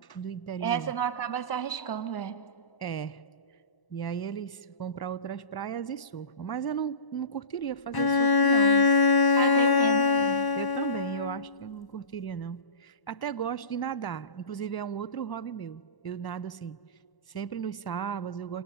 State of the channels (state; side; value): late; right; 1.0 ms